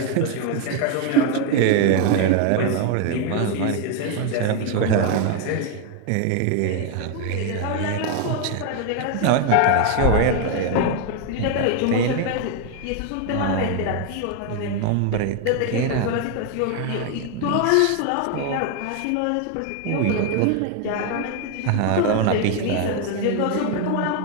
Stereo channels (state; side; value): different; both; correlation 0.01